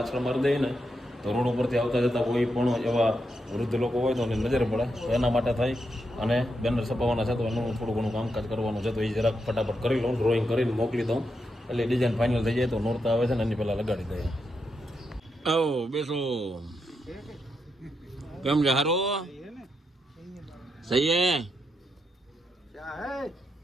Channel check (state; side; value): normal; both; correlation 0.83